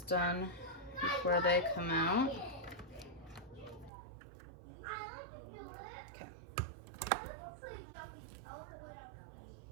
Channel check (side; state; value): left; drops out; at 3.9 s